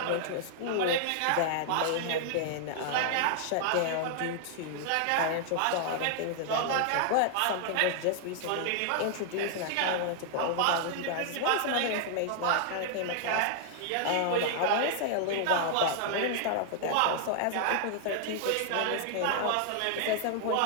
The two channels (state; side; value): different; both; correlation -0.01